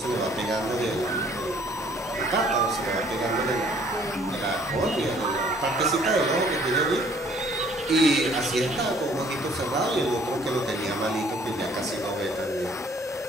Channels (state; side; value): normal; both; correlation 0.59